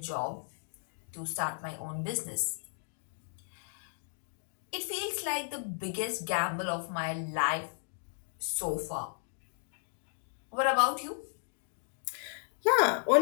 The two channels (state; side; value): silent; right; digital silence